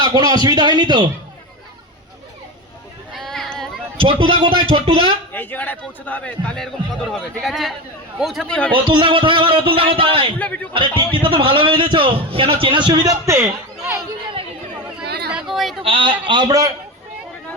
কোনো অসুবিধা হয়নি তো? ছোট্টদা কোথায়? ছোট্টদা এই জায়গাটায় পৌঁছতে হবে, তাহলে এরকম কদর হবে, ঠিক আছে? পৌঁছাতেই হবে। অতুলদা কোথায়? আবার অতুলদা কোথায়? আরে টিকিটটা তো ভালো বেঁধেছো, কেন চেনার সুবিধার্থে? আমরা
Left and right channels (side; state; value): both; normal; correlation 0.21